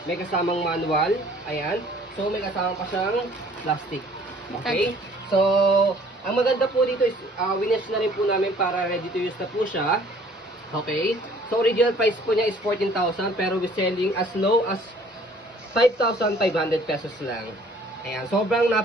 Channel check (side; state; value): both; normal; correlation 0.56